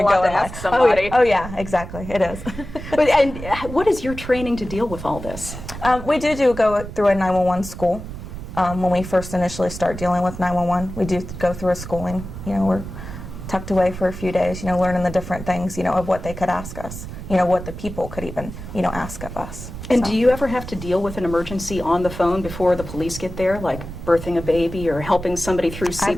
go in there. Oh yeah, exactly, it is. And what is your training to deal with all this? We do go through a 911 school. When we first initially start dealing with 911, we do go through a schooling. We're tucked away for a few days, learning the different things, of what they could ask us, what the people could even, ask of us. And do you ever have to deal with an emergency on the phone before the police get there, like birthing a baby or helping somebody through CPR?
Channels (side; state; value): right; noise; rumble, 10 dB below the sound